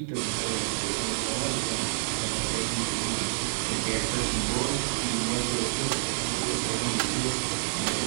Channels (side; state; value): left; silent; digital silence